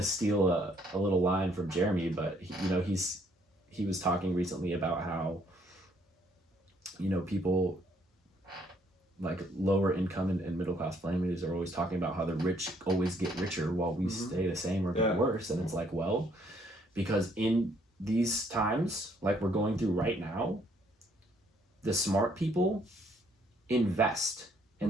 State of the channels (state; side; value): normal; both; correlation 0.67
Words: steal a little line from Jeremy, but he was talking recently about how, you know, people like lower income and middle class families are always talking about how the rich always get richer while we stay the same or get worse. And it's like, well, because in these times like we're going through right now, the smart people invest,